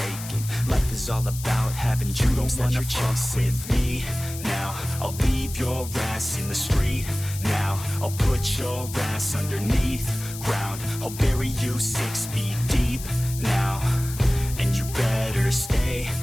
aching. Life is all about having dreams that you're chasing. With me now, I'll leave your ass in the street now. I'll put your ass underneath ground. I'll bury you 6 feet deep now. And you better stay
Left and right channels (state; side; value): noise; left; hiss, 12 dB below the sound